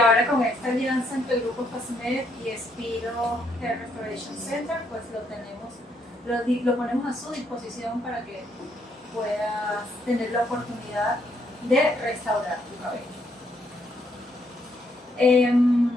con esta alianza entre el Grupo FASMED y Spiro Hair Restoration Center, pues lo ponemos a su disposición para que puedas tener la oportunidad de restaurar tu cabello.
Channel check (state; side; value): normal; both; correlation 0.73